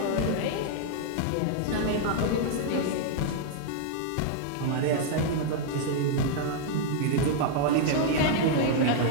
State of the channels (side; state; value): both; different; correlation -0.01